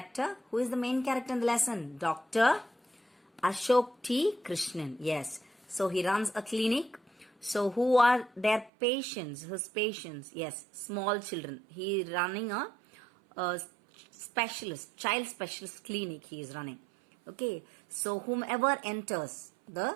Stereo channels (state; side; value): drops out; left; at 8.7 s